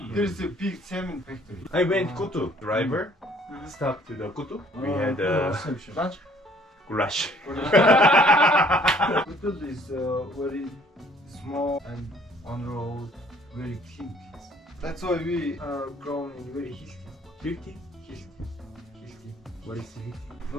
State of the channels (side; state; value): both; normal; correlation 0.58